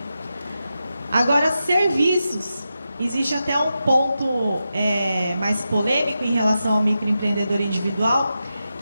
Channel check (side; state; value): both; inverted; correlation -0.90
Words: Agora, serviços. Existe até um ponto mais polêmico em relação ao microempreendedor individual,